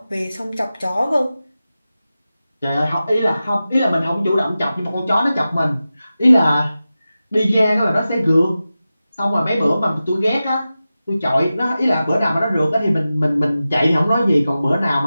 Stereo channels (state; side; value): inverted; both; correlation -0.94